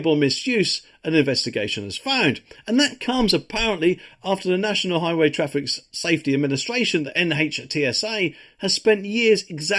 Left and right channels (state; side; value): identical; both; correlation 1.00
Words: misuse, an investigation has found. And that comes apparently after the National Highway Traffic Safety Administration, the NHTSA, has spent years